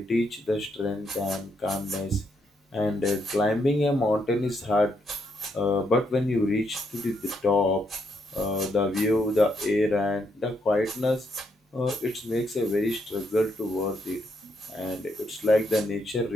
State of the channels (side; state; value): both; normal; correlation 0.77